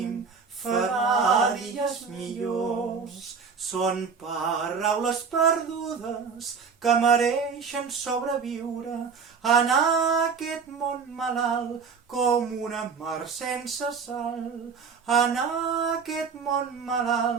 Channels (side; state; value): left; quieter; 5.7 dB